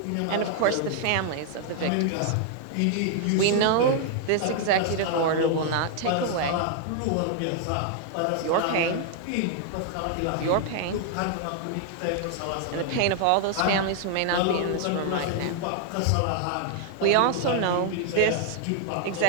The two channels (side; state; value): both; different; correlation 0.00